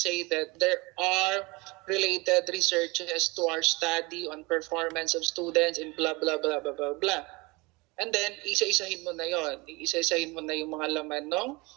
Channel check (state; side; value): quieter; left; 25.2 dB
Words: that there are related researches to our study on performance of students in blah, blah, blah, blah, blah, blah. And then, isa-isahin mo na yon. Isa-isahin mo na yung mga laman ng